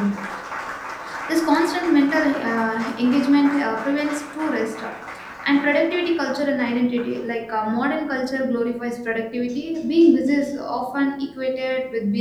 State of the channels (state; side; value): identical; both; correlation 1.00